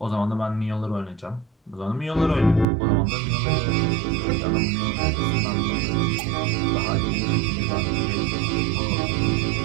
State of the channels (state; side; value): drops out; left; at 2.7 s